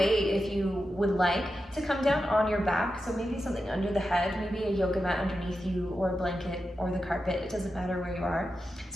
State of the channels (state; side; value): normal; both; correlation 0.90